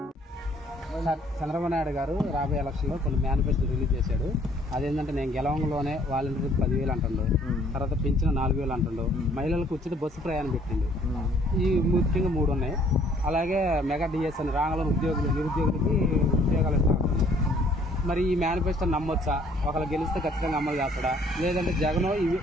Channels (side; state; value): both; normal; correlation 0.60